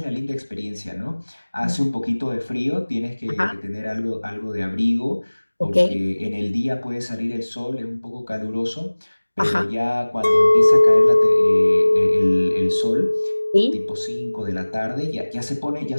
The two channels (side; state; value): both; inverted; correlation -1.00